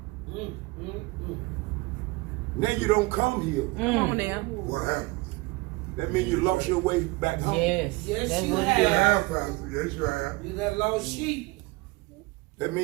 now you don't come here. Come on now. What happened? That means you lost your way back home. Yes. Yes, That's you what have. it is. Yeah, Pastor. Yes, you have. You that lost sheep. That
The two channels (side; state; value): left; quieter; 23.5 dB